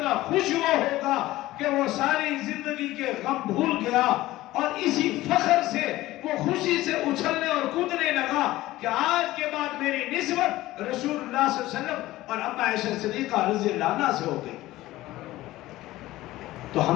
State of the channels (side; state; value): right; quieter; 16.9 dB